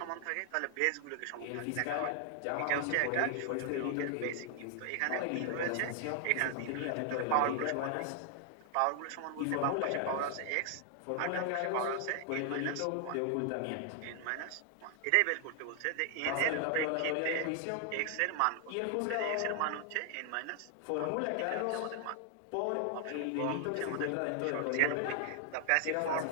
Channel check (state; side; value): different; both; correlation 0.00